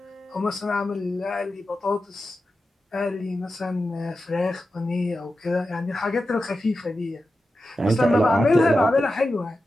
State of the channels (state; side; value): normal; both; correlation 0.91